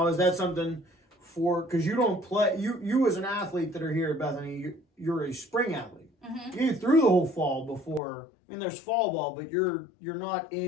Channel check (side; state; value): right; drops out; at 8.0 s